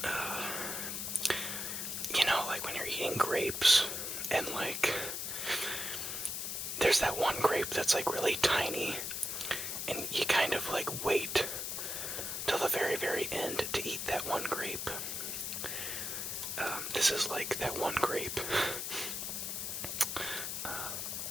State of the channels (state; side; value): noise; left; hiss, 3 dB below the sound